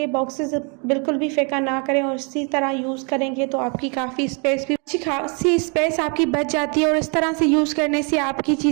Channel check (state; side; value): quieter; left; 35.4 dB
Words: बॉक्सेस बिल्कुल भी फेंका ना करें और इसी तरह यूज़ करेंगे तो आपकी काफ़ी स्पेस भी, अच्छी खासी स्पेस आपकी बच जाती है और इस तरह से यूज़ करने से आपकी